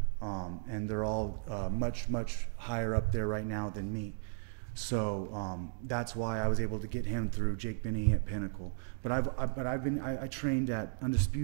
and they're all much higher up there right now than me. So that's why I was able to get him through Jake Binney at Pinnacle. But I trained at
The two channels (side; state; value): left; silent; digital silence